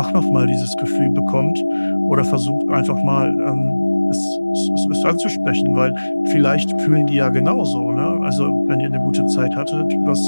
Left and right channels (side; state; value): both; inverted; correlation -1.00